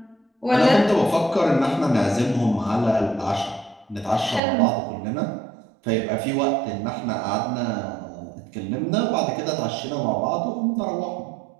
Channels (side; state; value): left; drops out; at 4.4 s